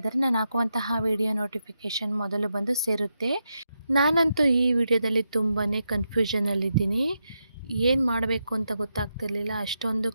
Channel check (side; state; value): both; inverted; correlation -0.85